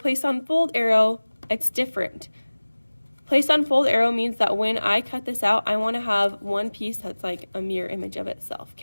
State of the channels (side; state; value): both; inverted; correlation -1.00